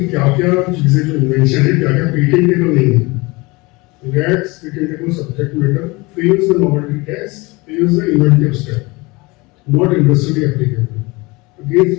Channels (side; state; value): right; quieter; 24.3 dB